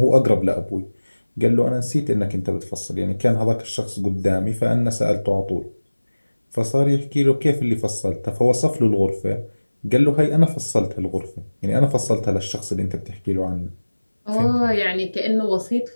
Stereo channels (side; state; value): both; inverted; correlation -1.00